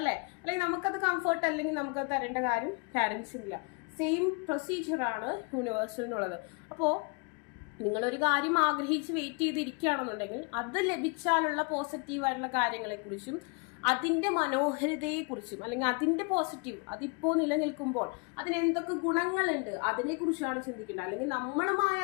അല്ലെങ്കിൽ നമുക്കത് കംഫർട്ട് അല്ലെങ്കിൽ നമുക്കത് തരേണ്ട കാര്യം പാരൻസിനില്ല. സെയിം പ്രൊസീജിയറാണ് യൂണിവേഴ്സലിനുള്ളത്. അപ്പോൾ നിങ്ങളൊരു കാര്യം ആഗ്രഹിച്ച് വെയിറ്റ് ചെയ്തിരിക്കുകയാണെന്നുണ്ടെങ്കിൽ അത് ലഭിച്ചാലുള്ള പോസിറ്റീവായിട്ടുള്ള കാര്യങ്ങളെക്കുറിച്ചും അതിൻ്റെ മനോഹരതയെക്കുറിച്ചും അല്ലെങ്കിൽ അതിൻ്റെ പോസിറ്റീവ് അതിപ്പോൾ നിലനിൽക്കുമ്പോൾ അതിനെന്തൊക്കെ ഗുണങ്ങളുണ്ട് അതിനെക്കുറിച്ചാണ് ചിന്തിക്കേണ്ടത്. അല്ലെങ്കിൽ നമ്മളുമായി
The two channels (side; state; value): right; quieter; 33.4 dB